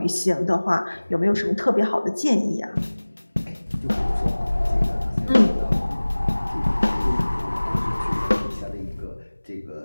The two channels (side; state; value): both; inverted; correlation -1.00